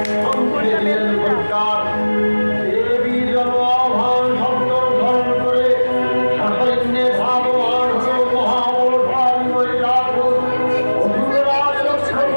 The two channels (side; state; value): both; inverted; correlation -1.00